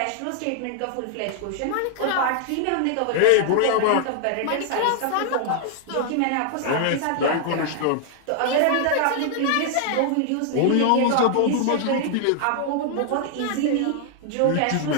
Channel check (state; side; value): different; both; correlation 0.00